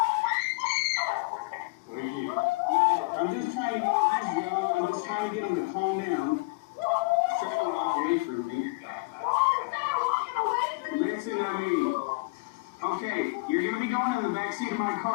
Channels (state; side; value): quieter; right; 26.8 dB